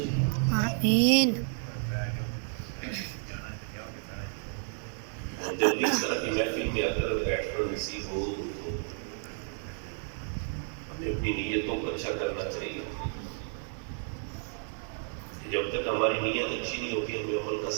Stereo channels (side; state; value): left; silent; 57 dB below the other